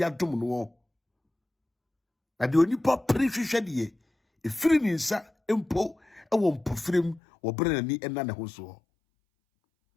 adom no na de onipa prehwehwe de efiri ni nsa empo ewo mpofrem wo brenani ena ne ho so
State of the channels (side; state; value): right; drops out; at 7.2 s